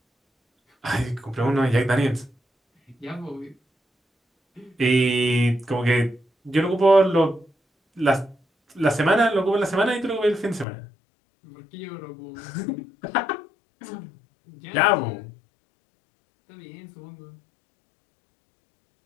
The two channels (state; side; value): drops out; right; at 10.7 s